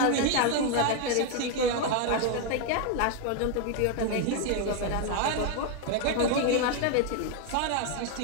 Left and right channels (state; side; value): different; both; correlation 0.01